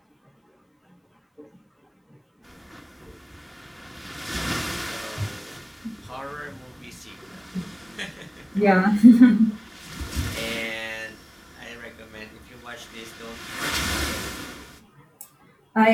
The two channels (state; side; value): identical; both; correlation 1.00